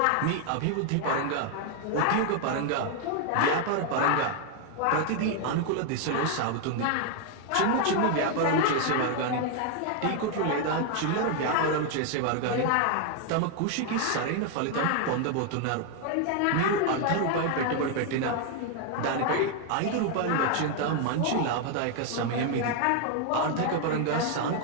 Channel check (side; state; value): both; different; correlation 0.00